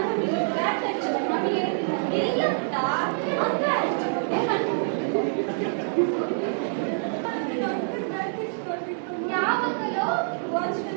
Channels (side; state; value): left; silent; digital silence